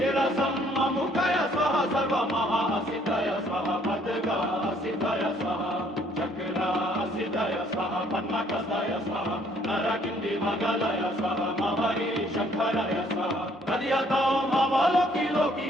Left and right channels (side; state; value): both; normal; correlation 0.63